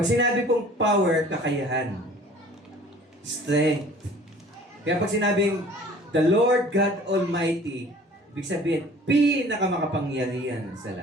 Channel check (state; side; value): normal; both; correlation 0.49